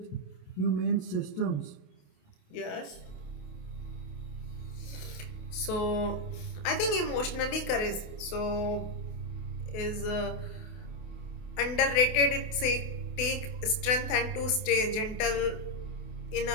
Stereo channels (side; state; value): right; late; 28 ms